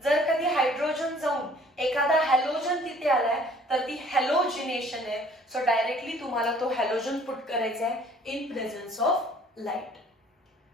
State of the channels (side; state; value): both; normal; correlation 0.55